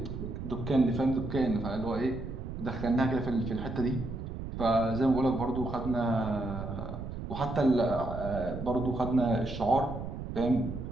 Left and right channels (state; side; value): noise; right; rumble, 7 dB below the sound